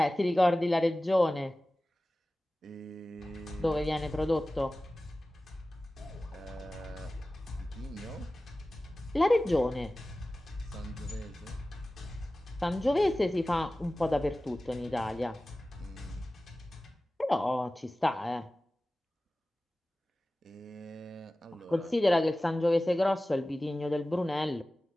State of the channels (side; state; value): both; normal; correlation 0.97